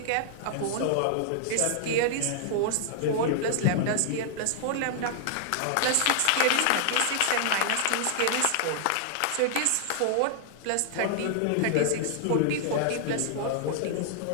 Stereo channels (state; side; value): different; both; correlation -0.01